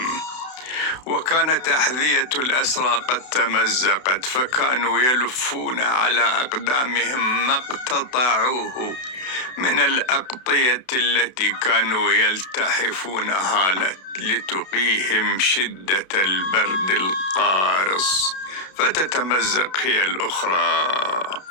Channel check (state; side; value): late; right; 32 ms